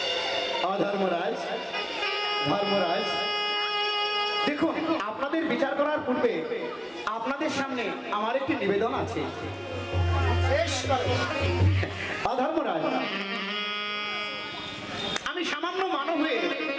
অধর্মরাজ, ধর্মরাজ, দেখুন আপনাদের বিচার করার পূর্বে আপনাদের সামনে আমার একটি নিবেদন আছে। অধর্মরাজ, আমি সামান্য মানব হয়ে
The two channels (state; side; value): identical; both; correlation 1.00